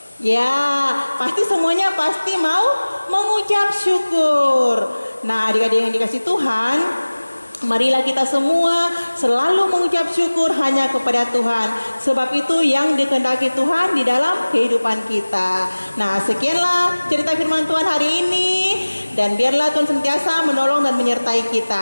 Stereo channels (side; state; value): both; inverted; correlation -1.00